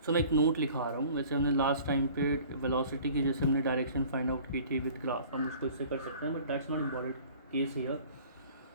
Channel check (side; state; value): both; inverted; correlation -0.48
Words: सो मैं एक नोट लिखा रहा हूँ. वैसे हमने लास्ट टाइम पे वेलोसिटी की जैसे हमने डायरेक्शन फाइंड आउट की थी विद ग्राफ, हम उसको इससे कर सकते हैं, but that's not important case here.